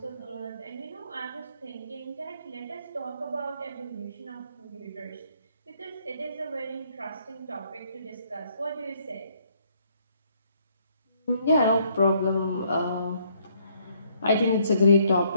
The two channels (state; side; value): inverted; both; correlation -0.68